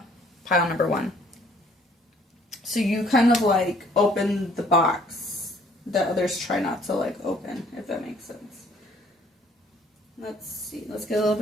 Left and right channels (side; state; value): both; normal; correlation 0.60